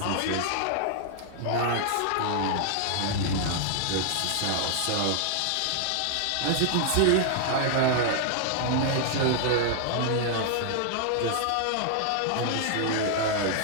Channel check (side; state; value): both; different; correlation 0.00